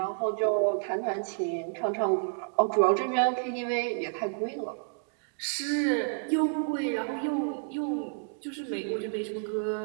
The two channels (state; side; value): silent; left; digital silence